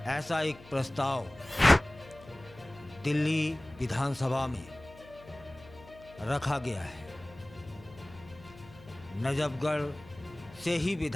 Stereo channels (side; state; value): left; noise; hum, 21 dB below the sound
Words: ऐसा एक प्रस्ताव दिल्ली विधानसभा में रखा गया है। नजफगढ़ से ही